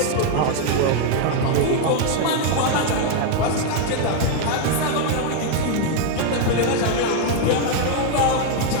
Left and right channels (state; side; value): different; both; correlation 0.00